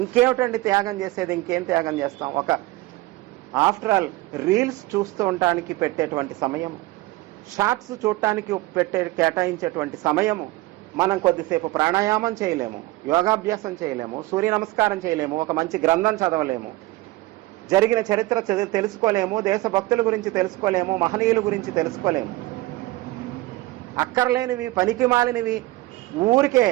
ఇంకేమిటండి త్యాగం చేసేది? ఇంకేం త్యాగం చేస్తాం? ఆఫ్టర్ ఆల్ రీల్స్ చూస్తూ ఉండటానికి పెట్టేటువంటి సమయము, షార్ట్స్ చూడటానికి కేటాయించేటువంటి సమయము, మనం కొద్దిసేపు ప్రాణాయామం చేయలేము, యోగాభ్యాసం చేయలేము, సూర్య నమస్కారం చేయలేము, ఒక మంచి గ్రంథం చదవలేము, జరిగిన చరిత్ర తెలుసుకోలేము, దేశభక్తుల గురించి తెలుసుకోలేము, మహనీయుల గురించి తెలుసుకోలేము. అక్కర్లేనివి, పనికి మాలినవి, ఊరికే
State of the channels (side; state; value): left; quieter; 19.4 dB